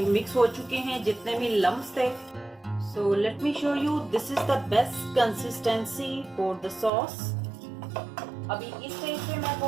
मिक्स हो चुके हैं जितने भी लम्प्स थे। So let me show you, this is the best consistency for the sauce. अभी इस स्टेज पे मैं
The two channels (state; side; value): drops out; left; at 6.9 s